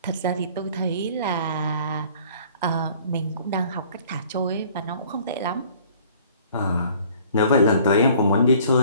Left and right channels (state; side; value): inverted; both; correlation -0.54